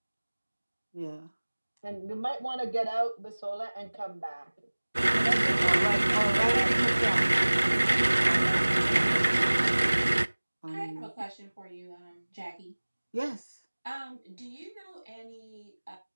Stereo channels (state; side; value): inverted; both; correlation -1.00